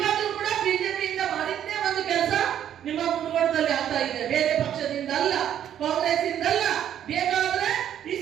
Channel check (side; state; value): left; quieter; 10.2 dB